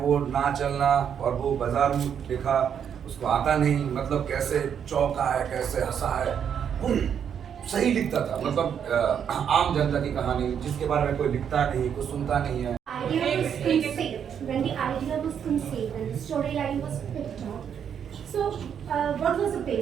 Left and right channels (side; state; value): left; quieter; 8.2 dB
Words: ना चलना, और वो बाजार में लिखा, उसको आता नहीं, मतलब कैसे चौंका है, कैसे हंसा है, वो सही लिखता था. मतलब आम जनता की कहानी जिसके बारे में कोई लिखता नहीं, कोई सुनता नहीं है. Idea was instinct. When the idea storyline was picked up. So, what was the